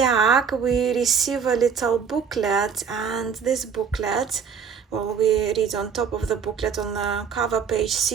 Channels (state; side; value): quieter; left; 6.6 dB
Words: we receive a little booklet, and this booklet, well, we read on top of the booklet on the cover page,